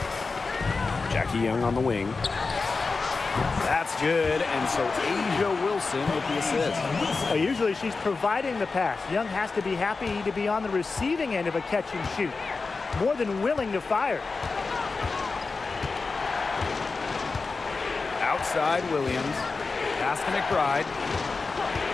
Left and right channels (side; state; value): right; quieter; 4.2 dB